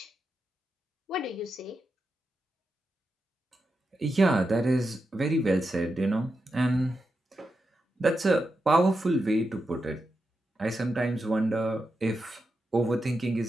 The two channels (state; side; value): normal; both; correlation 0.87